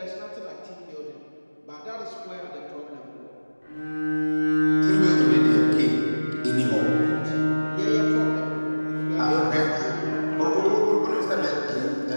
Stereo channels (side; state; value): both; inverted; correlation -1.00